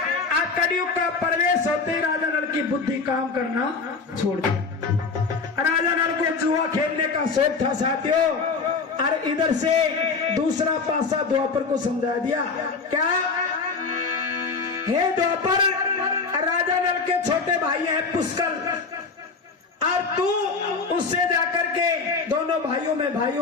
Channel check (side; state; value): right; quieter; 4.6 dB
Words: अब कलयुग का प्रवेश होते ही राजा नल की बुद्धि काम करना छोड़ दिया। राजा नल को जुआ खेलने का शौक था साथियों, और इधर से दूसरा पासा द्वापर को समझा दिया। क्या? हे द्वापर, राजा नल के छोटे भाई हैं पुष्कर, और तू उससे जाकर के दोनों